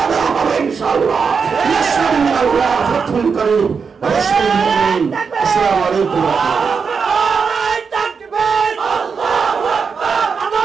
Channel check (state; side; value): quieter; left; 5.6 dB